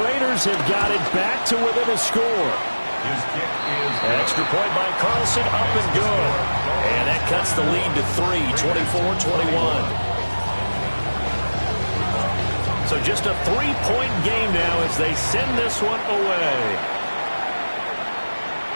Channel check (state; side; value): inverted; both; correlation -1.00